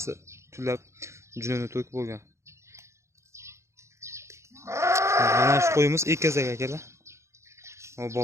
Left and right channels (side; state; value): left; late; 0.14 ms